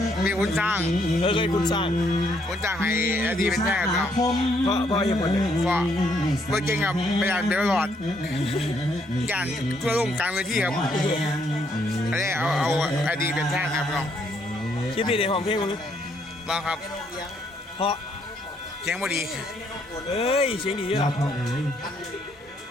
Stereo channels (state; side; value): normal; both; correlation 0.71